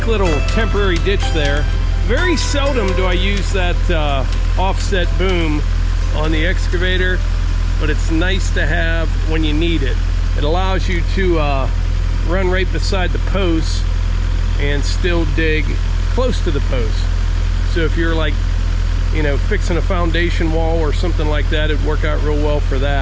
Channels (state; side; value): identical; both; correlation 1.00